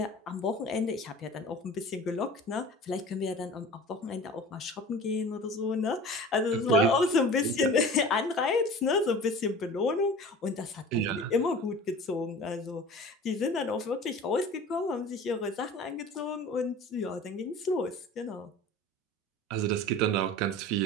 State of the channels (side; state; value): both; normal; correlation 0.40